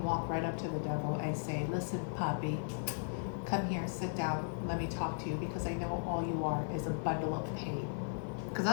walk right up to the devil and say, listen, puppy, come here, sit down, let me talk to you, because I know all you are is a bundle of pain. Because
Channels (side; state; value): right; silent; 53 dB below the other